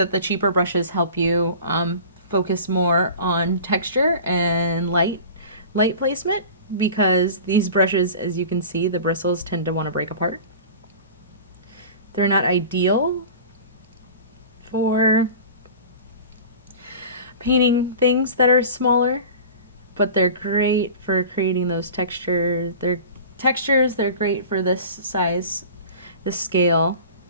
the cheaper brushes help you focus more on texture and light placement, because these brushes, as you can see, the bristles tend to want to break apart. They're not ideal for painting things that are smaller, but they're great for creating those textures. They're great for this size, this scale.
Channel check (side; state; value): both; inverted; correlation -0.38